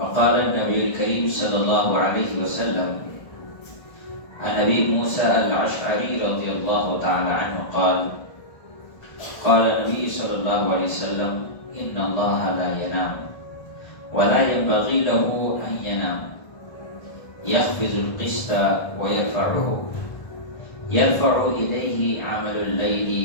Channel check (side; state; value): right; late; 1.5 ms